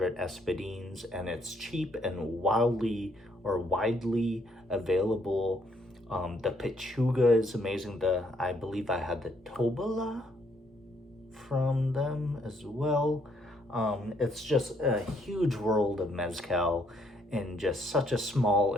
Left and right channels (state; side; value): normal; both; correlation 0.70